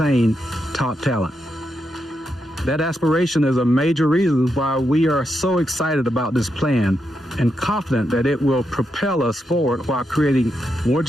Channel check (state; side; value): normal; both; correlation 0.83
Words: top talent. That aspiration is a major reason why we are so excited about this plan and confident that it will propel us forward while creating more